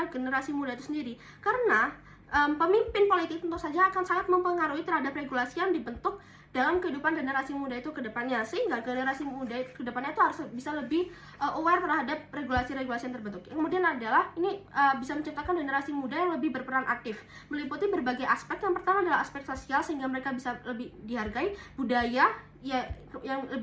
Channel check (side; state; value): both; identical; correlation 1.00